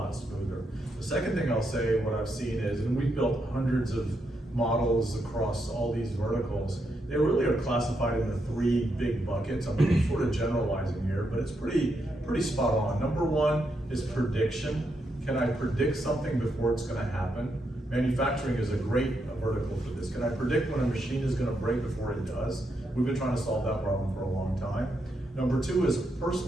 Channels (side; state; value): both; normal; correlation 0.81